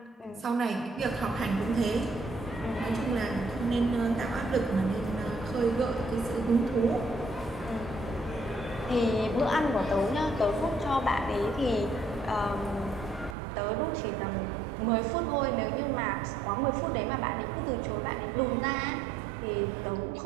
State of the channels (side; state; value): left; drops out; at 13.4 s